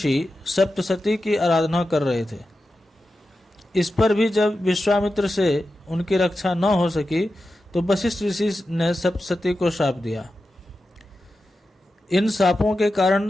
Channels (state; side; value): normal; both; correlation 0.91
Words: सप्तसती की आराधना कर रहे थे। इस पर भी जब विश्वामित्र से उनकी रक्षा न हो सकी तो वशिष्ठ ऋषि ने सप्तसती को शाप दिया। इन शापों के